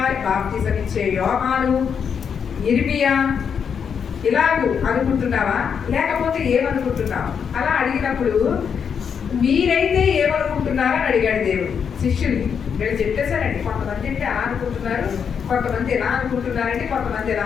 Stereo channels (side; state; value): right; quieter; 7.0 dB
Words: బాప్తిసం ఇచ్చే యోహాను, ఇర్మియా ఇలాగూ అనుకుంటున్నావా, లేకపోతే ఏమనుకుంటున్నావు? అలా అడిగినప్పుడు మీరైతే ఏమనుకుంటున్నారని అడిగాడు దేవుడు శిష్యుల్ని. వీళ్ళు చెప్పేశారండి, కొంతమంది అంటే అలా అనుకుంటున్నారు, కొంతమంది ఎలా అనుకుంటున్నారంటే కొంతమంది ఎలా